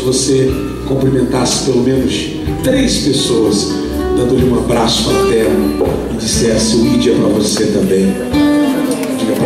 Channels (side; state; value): both; identical; correlation 1.00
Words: você cumprimentasse pelo menos 3 pessoas, dando-lhe um abraço fraterno e dissesse: o ID é para você também. Diga